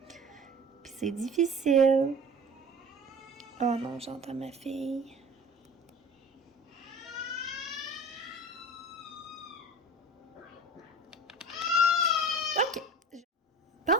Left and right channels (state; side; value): normal; both; correlation 0.39